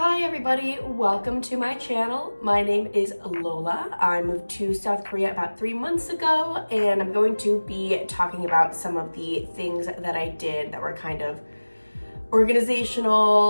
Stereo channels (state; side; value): inverted; both; correlation -1.00